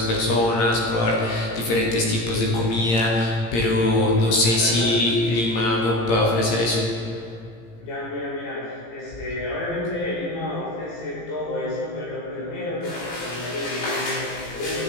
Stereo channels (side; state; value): right; late; 17 ms